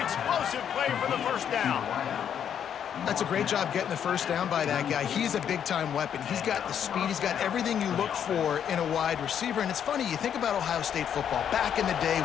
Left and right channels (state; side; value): quieter; right; 8.8 dB